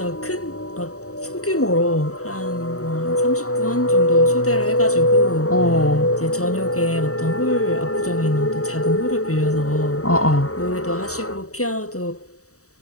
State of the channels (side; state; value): right; late; 0.65 ms